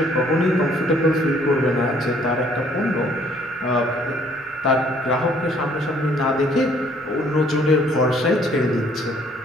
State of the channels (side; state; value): both; normal; correlation 0.62